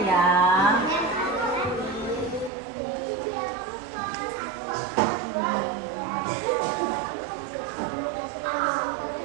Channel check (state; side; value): drops out; left; at 2.5 s